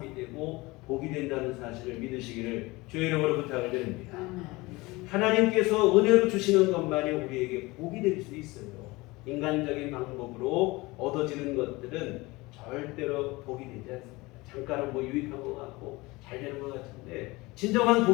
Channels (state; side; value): quieter; right; 22.3 dB